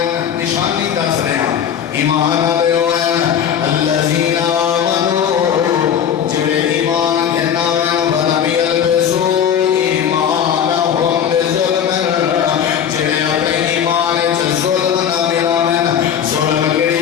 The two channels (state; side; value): quieter; right; 8.6 dB